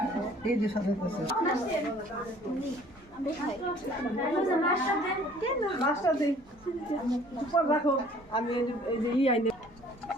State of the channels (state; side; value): normal; both; correlation 0.54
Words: এই যে সাথে আছে মাছটা দে উপর রাখো আমি এই যে ই আইনে